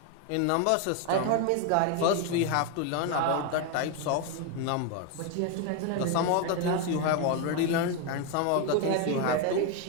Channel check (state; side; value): different; both; correlation 0.01